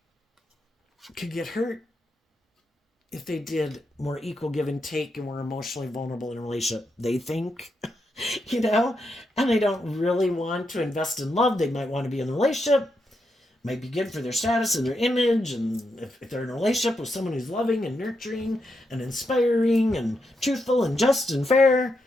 could get hurt if they did more equal give and take and were emotionally vulnerable in a relationship. They think, you know, and they don't really want to invest in love. They might want to be in a relationship. Might be good for their status and their image. And if they're in a relationship with someone who's loving and nurturing and inspiring and truthful and just and fair,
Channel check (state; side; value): normal; both; correlation 0.83